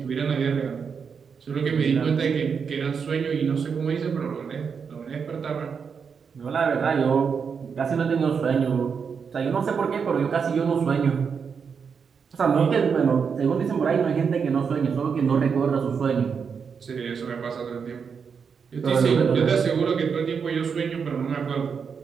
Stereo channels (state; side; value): quieter; left; 6.2 dB